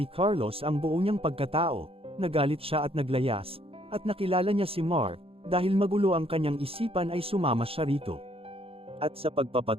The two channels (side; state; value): left; late; 0.27 ms